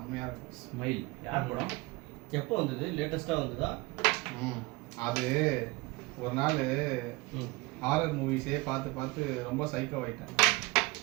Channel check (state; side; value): quieter; left; 23.1 dB